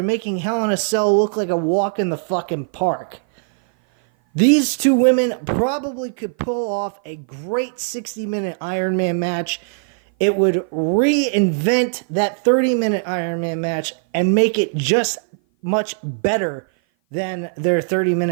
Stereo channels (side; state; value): left; silent; 57 dB below the other